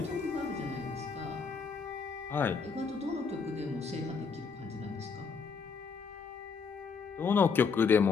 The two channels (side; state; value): right; quieter; 5.4 dB